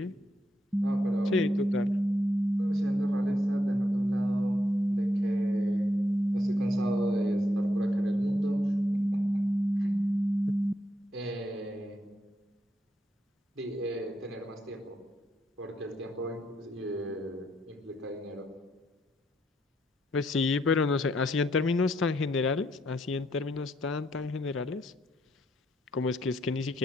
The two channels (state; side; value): normal; both; correlation 0.77